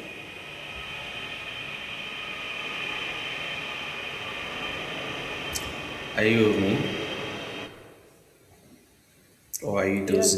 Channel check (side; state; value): both; identical; correlation 1.00